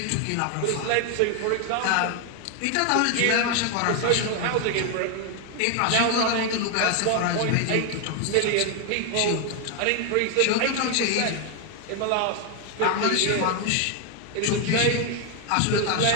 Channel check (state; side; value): different; both; correlation 0.01